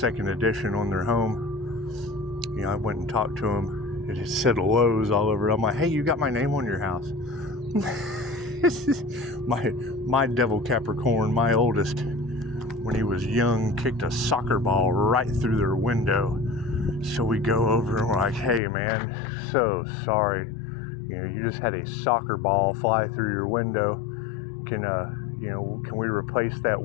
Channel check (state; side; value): drops out; right; at 18.6 s